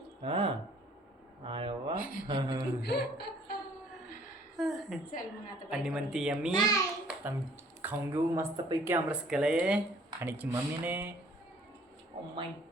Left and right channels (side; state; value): both; normal; correlation 0.58